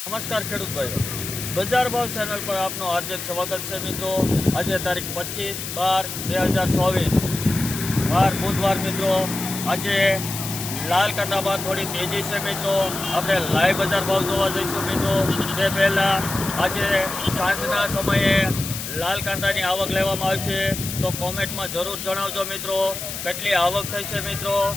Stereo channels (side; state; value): left; noise; hiss, 7 dB below the sound